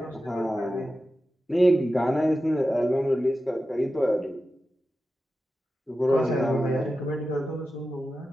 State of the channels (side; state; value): both; normal; correlation 0.92